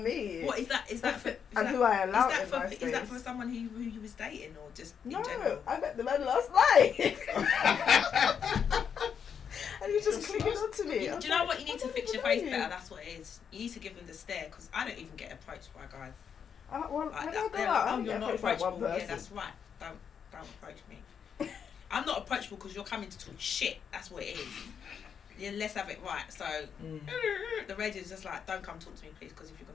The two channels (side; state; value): right; quieter; 7.4 dB